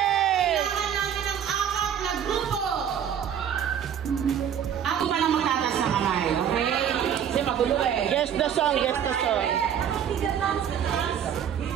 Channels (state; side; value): quieter; left; 8.9 dB